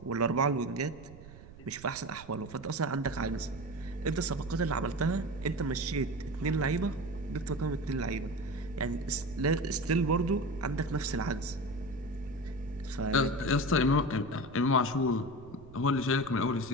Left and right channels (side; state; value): right; noise; rumble, 18 dB below the sound